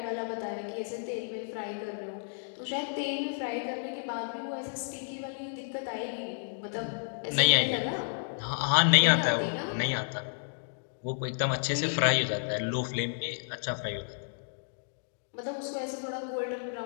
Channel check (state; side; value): silent; right; digital silence